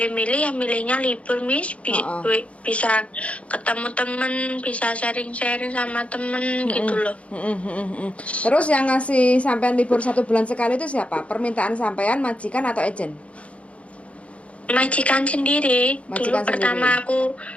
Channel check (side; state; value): right; late; 0.063 ms